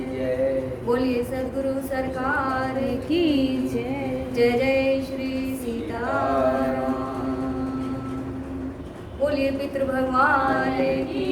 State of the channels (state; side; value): identical; both; correlation 1.00